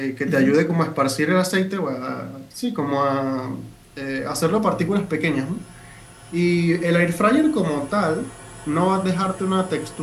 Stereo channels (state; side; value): identical; both; correlation 1.00